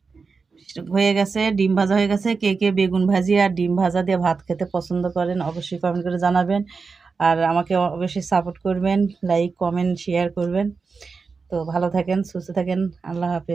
হয়ে গেছে, ডিম ভাজা হয়ে গেছে। কে কে বেগুন ভাজি আর ডিম ভাজা দিয়ে ভাত খেতে পছন্দ করেন অবশ্যই কমেন্ট করে জানাবেন। আর আমাকে অবশ্যই সাপোর্ট করবেন, লাইক কমেন্ট শেয়ার করবেন। তো ভালো থাকেন, সুস্থ থাকেন, আল্লাহ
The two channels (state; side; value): quieter; left; 4.7 dB